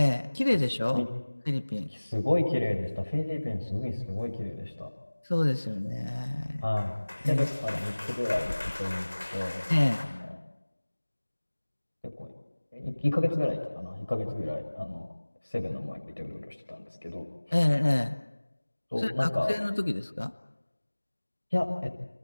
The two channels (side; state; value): both; inverted; correlation -1.00